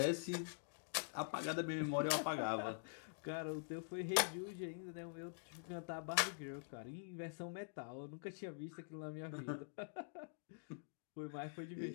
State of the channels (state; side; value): silent; right; digital silence